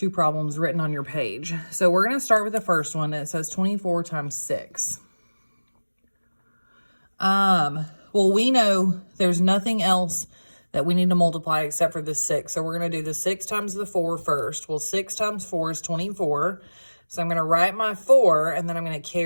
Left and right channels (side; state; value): both; inverted; correlation -1.00